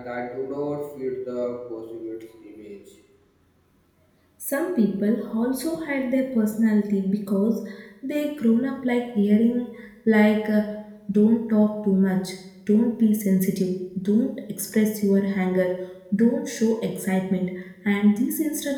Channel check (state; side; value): identical; both; correlation 1.00